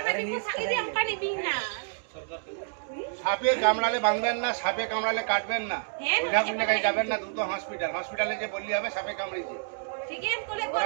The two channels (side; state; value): left; silent; digital silence